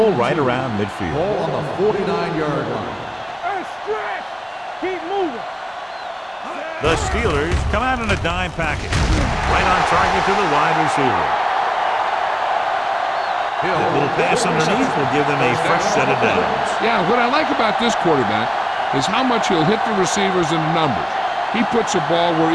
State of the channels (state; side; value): identical; both; correlation 1.00